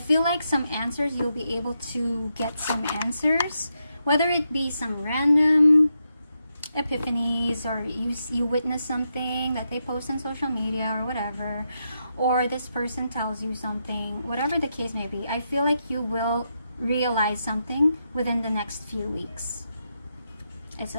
like some answers, you'll be able to get some answers, whether it be some random epiphanies, or you witness something that they post on social media or whatever, or this person tells you something, whatever the case may be. I feel like you will realize something within the next few weeks. It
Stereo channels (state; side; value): inverted; both; correlation -0.84